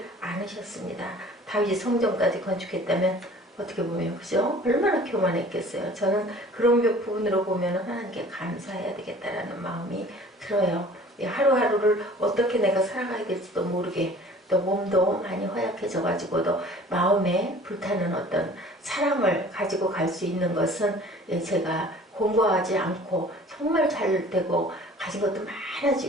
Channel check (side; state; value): both; normal; correlation 0.48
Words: 않으셨습니다. 다윗이 성전까지 건축했다면 어떻게 보면, 그죠? 얼마나 교만했겠어요. 저는 그런 부분으로 보면 하나님께 감사해야 되겠다라는 마음이 들어요. 하루하루를 어떻게 내가 살아가야 될지도 모르게, 또 몸도 많이 허약해져가지고도 마음에 불타는 어떤 사랑을 가지고 갈 수 있는 것은 제가 공부하지 않고 정말 잘 되고 가진 것도